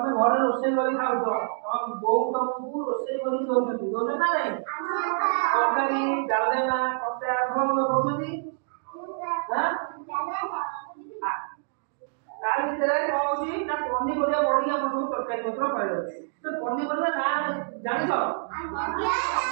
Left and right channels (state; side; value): silent; left; digital silence